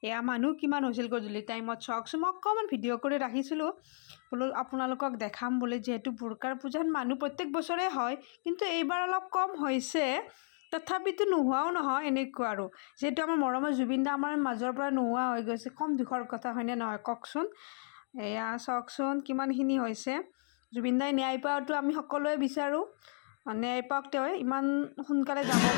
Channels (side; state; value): right; silent; 55 dB below the other